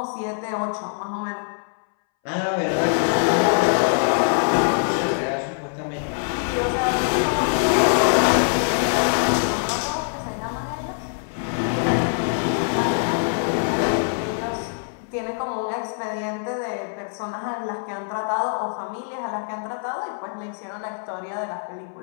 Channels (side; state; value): right; silent; 62 dB below the other